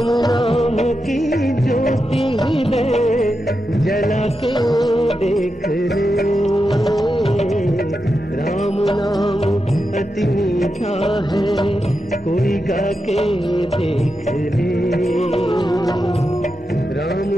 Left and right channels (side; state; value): both; normal; correlation 0.88